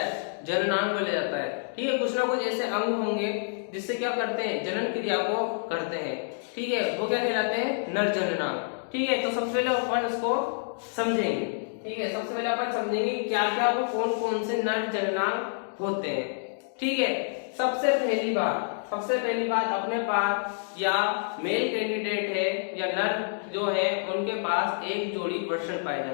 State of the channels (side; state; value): right; silent; digital silence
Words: जननांग बोला जाता है। ठीक है, कुछ ना कुछ ऐसे अंग होंगे जिससे क्या करते हैं, जनन क्रिया को करते हैं। ठीक है, वो क्या कहलाते हैं, नर जननांग। ठीक है, तो सबसे पहले अपन इसको समझेंगे। ठीक है, सबसे पहले अपन समझेंगे क्या क्या वो कौन कौन से नर जननांग होते हैं। ठीक है, सबसे पहली बात अपने पास या मेल कैंडिडेट है या नर जो है उनके पास एक जोड़ी वृषण पाए